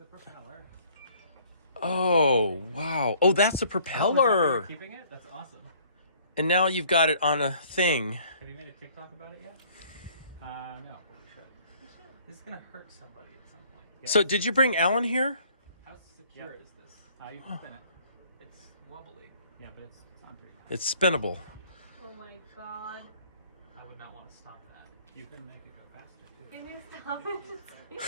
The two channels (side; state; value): both; inverted; correlation -0.58